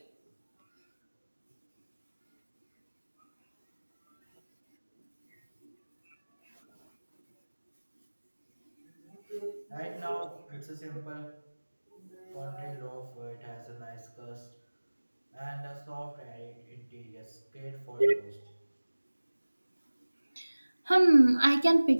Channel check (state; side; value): inverted; both; correlation -1.00